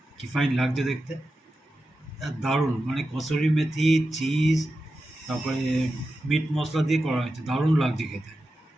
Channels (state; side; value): normal; both; correlation 0.91